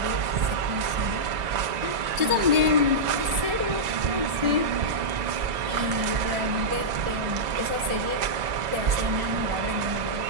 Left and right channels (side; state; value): left; late; 2.0 ms